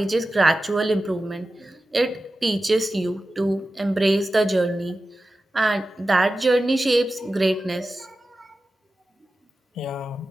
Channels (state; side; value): normal; both; correlation 0.93